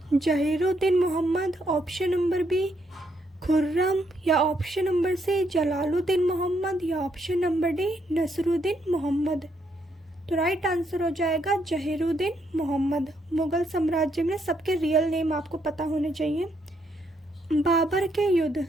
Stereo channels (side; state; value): both; normal; correlation 0.75